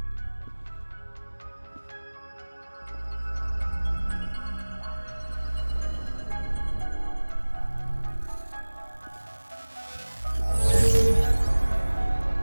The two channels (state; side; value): inverted; both; correlation -1.00